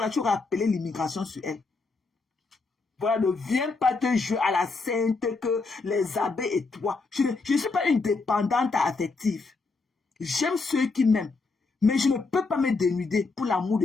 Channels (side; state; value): right; quieter; 4.0 dB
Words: tu aurais appelé l'immigration sur elle. Voilà, ne viens pas te jouer à la sainte que les abeilles et toi. Je ne suis pas une dépendante affective. J'aime ceux qui m'aiment. Mais je ne peux pas me dénuder pour l'amour